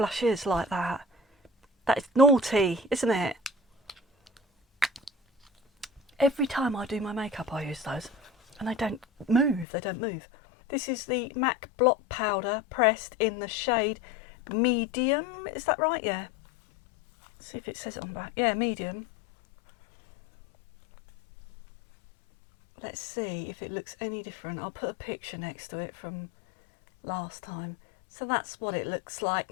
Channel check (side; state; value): right; drops out; at 9.7 s